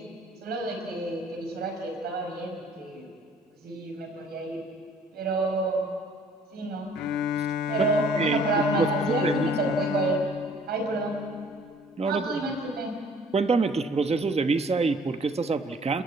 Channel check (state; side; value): normal; both; correlation 0.56